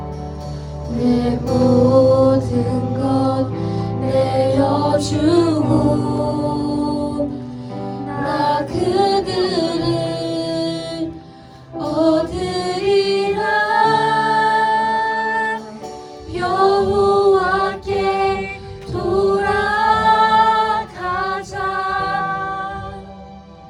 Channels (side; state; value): both; identical; correlation 1.00